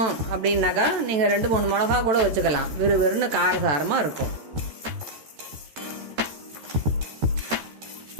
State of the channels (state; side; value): late; left; 14 ms